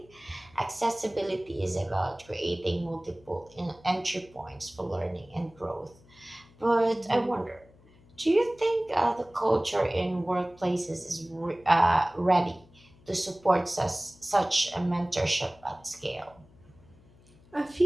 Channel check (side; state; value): left; noise; hum, 27 dB below the sound